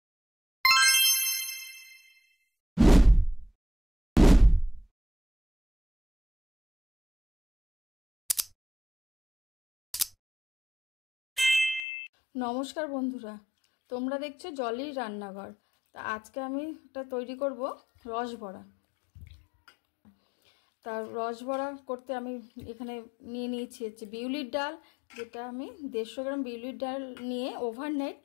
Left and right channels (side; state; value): right; drops out; at 11.9 s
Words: নমস্কার বন্ধুরা, তোমরা দেখছো জলির রান্নাঘর। তা আজকে আমি একটা তৈরি করব রসবড়া। তার রসবড়া করতে আমি এখানে নিয়েছি হচ্ছে বিউলির ডাল, যেটা আমি 150 গ্রাম বিউলির ডাল নিয়ে ওভারনাইট